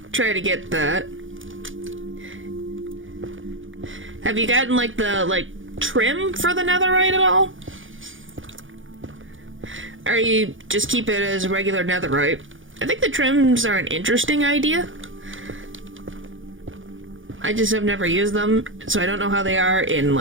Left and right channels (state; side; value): late; left; 0.57 ms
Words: try to get that. Have you gotten the trim for the netherite at all? Or you just keep it as regular netherite? I think the trims are an interesting idea. I just have never used them, so I don't know how they are in,